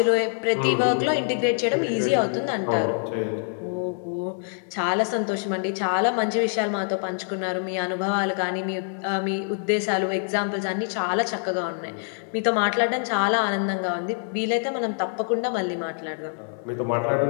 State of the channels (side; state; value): right; silent; 62 dB below the other